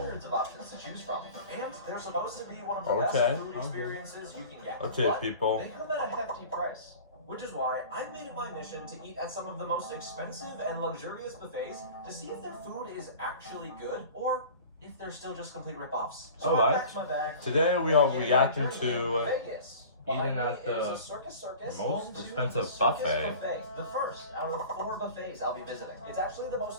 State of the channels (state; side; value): inverted; both; correlation -0.40